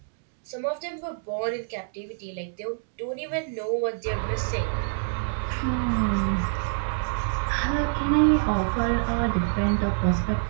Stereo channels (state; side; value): silent; left; digital silence